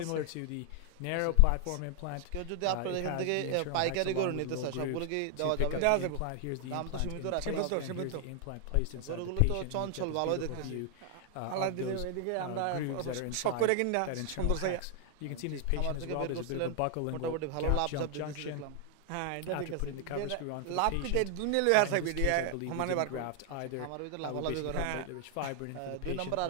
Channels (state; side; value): different; both; correlation 0.00